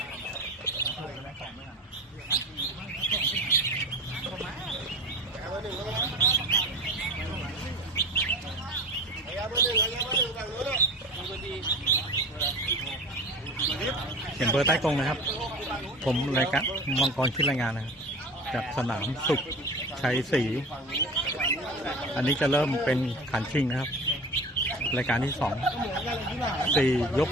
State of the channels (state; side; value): normal; both; correlation 0.34